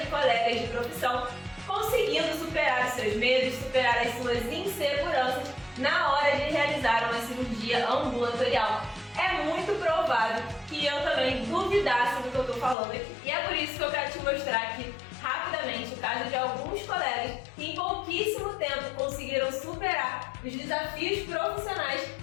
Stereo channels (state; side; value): drops out; right; at 12.8 s